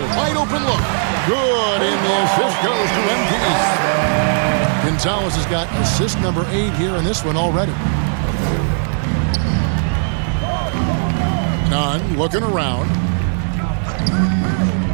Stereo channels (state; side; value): silent; left; 68 dB below the other